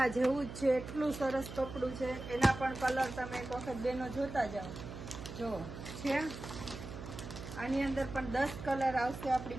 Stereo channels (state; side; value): noise; right; hum, 10 dB below the sound